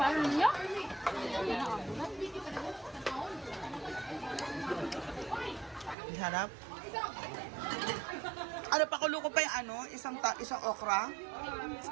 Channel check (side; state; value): left; drops out; at 6.0 s